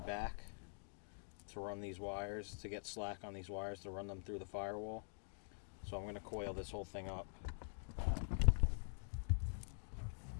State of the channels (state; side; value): silent; right; digital silence